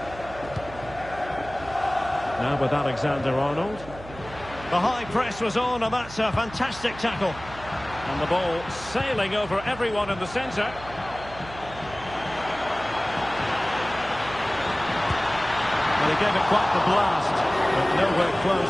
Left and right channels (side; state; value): right; noise; hum, 16 dB below the sound